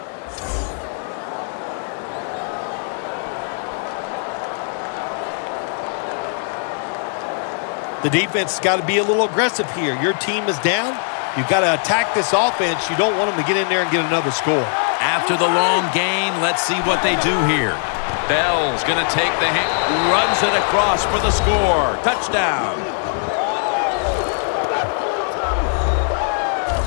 The defense has got to be a little aggressive here. Your team is down. You've got to attack this offense. You don't want them to get in there and get another score. After the long gain, let's see what they do here. Bell's going to take the hit, runs it across for the score. Touchdown.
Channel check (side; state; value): right; silent; 61 dB below the other